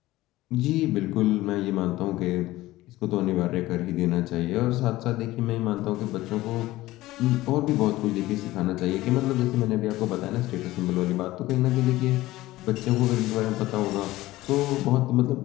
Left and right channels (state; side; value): quieter; right; 17.3 dB